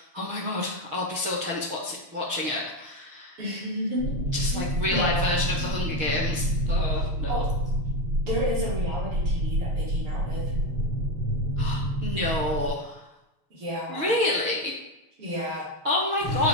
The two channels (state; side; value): late; left; 6.5 ms